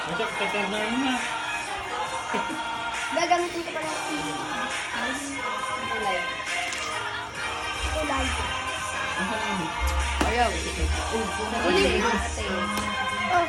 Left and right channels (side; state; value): both; identical; correlation 1.00